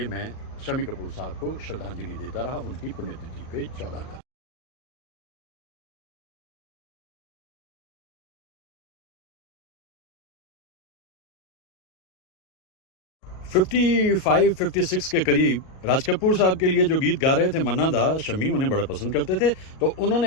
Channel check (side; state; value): right; late; 38 ms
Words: मैं शम्मी कपूर साहब को श्रद्धांजलि देता रहा उनकी पुण्यतिथि पे 14 अगस्त। 55-56 के करीब राज कपूर साहब के लिए जो गीत गा रहे थे मन्ना दा, शम्मी उन्हें बड़ा पसंद करते थे। तो